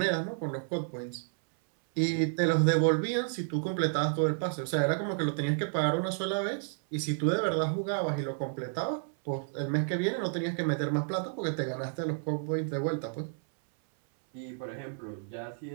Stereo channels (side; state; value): left; silent; 57 dB below the other